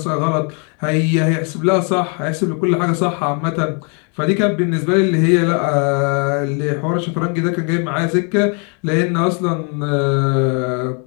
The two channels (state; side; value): quieter; right; 37.9 dB